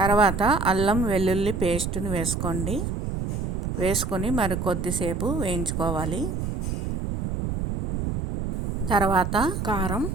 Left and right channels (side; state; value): right; noise; rumble, 2 dB below the sound